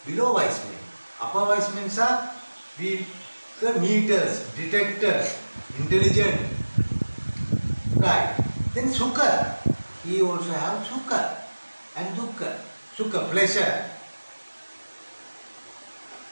below wise men. Upper wise men are the meters, detector, intelligent. Right. Then sukha. He also have sukha and dukkha. Sukha, pleasure.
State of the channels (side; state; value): both; inverted; correlation -1.00